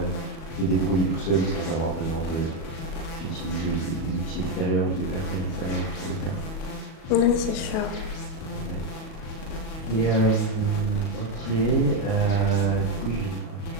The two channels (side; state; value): right; late; 37 ms